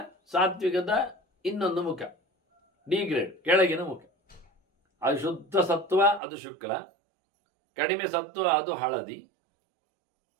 ಸಾತ್ವಿಕದ ಇನ್ನೊಂದು ಮುಖ, ಡಿಗ್ರೇಡ್, ಕೆಳಗಿನ ಮುಖ. ಅದು ಶುದ್ಧ ಸತ್ವ, ಅದು ಶುಕ್ಲ. ಕಡಿಮೆ ಸತ್ವ, ಅದು ಹಳದಿ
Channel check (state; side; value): drops out; left; at 6.2 s